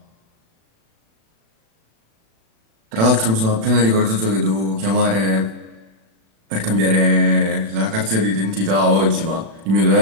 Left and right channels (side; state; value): left; late; 36 ms